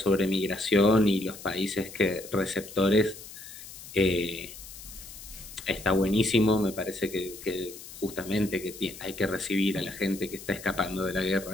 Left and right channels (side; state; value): left; noise; hiss, 15 dB below the sound